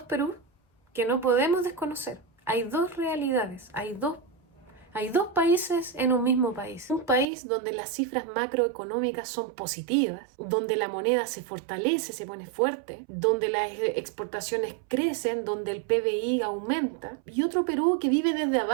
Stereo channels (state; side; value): drops out; left; at 7.2 s